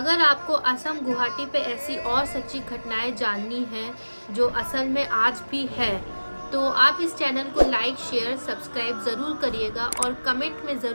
आपको असम गुवाहाटी पे ऐसी और सच्ची घटनाएं जाननी है जो असल में आज भी है, तो आप इस चैनल को लाइक, शेयर, सब्सक्राइब ज़रूर करिएगा, और कमेंट में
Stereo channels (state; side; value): inverted; both; correlation -1.00